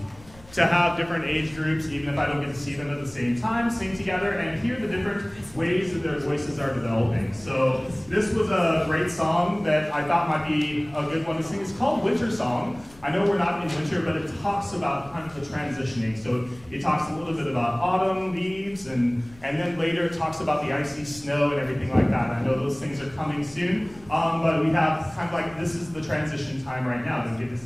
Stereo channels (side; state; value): left; noise; rumble, 23 dB below the sound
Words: to have different age groups, even if I don't get to see them at the same time, sing together and hear the different ways that their voices are developing. So this was a great song that I thought might be a good one to sing. It's called Winter Song. I know we're not in winter, but it talks about kind of the transitioning. So it talks a little bit about autumn leaves, and then later it talks about the icy snow and everything like that. I know those things are coming soon, but we have kind of like, this is the transition time right now to get this